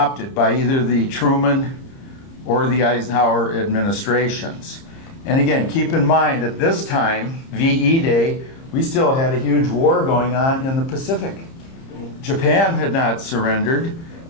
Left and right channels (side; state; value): right; late; 30 ms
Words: by either the Truman or the Eisenhower administrations. And again, keep in mind, at this time, VE Day, we still had a huge war going on in the Pacific. Japan had not surrendered,